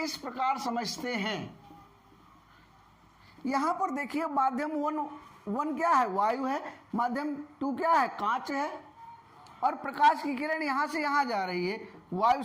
प्रकार समझते हैं। यहां पर देखिए, माध्यम 1 क्या है? वायु है। माध्यम 2 क्या है? कांच है। और प्रकाश की किरण यहां से यहां जा रही है, वायु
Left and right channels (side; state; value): both; identical; correlation 1.00